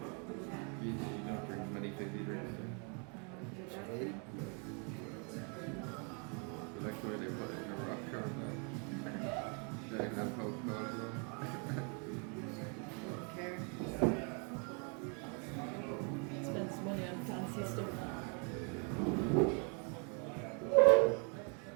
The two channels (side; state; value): left; quieter; 37.0 dB